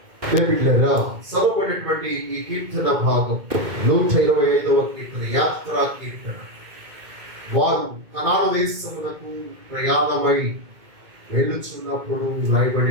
చదవబడినటువంటి ఈ కీర్తన భాగం 125వ కీర్తన, యాత్రా కీర్తన. వారు కనాను దేశమునకు ప్రయాణమై వెళ్ళుచున్నప్పుడు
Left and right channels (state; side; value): late; left; 2.2 ms